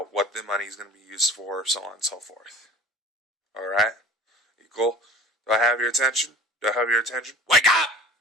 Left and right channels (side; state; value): both; normal; correlation 0.44